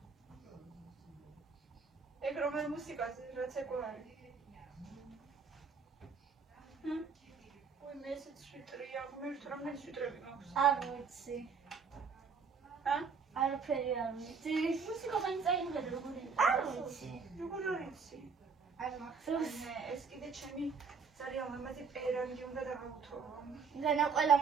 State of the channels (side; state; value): left; quieter; 5.4 dB